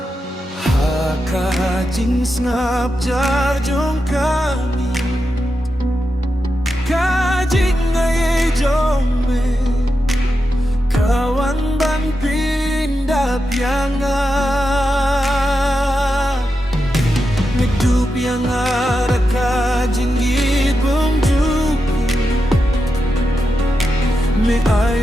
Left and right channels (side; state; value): both; normal; correlation 0.88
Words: Kajing snap jarjong kami Kajing ay jome Kawan ban pindah pianga Medu pianga ra kajing gibong juku Me